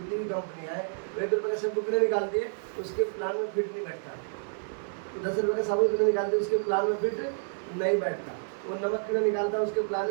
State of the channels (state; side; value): silent; left; digital silence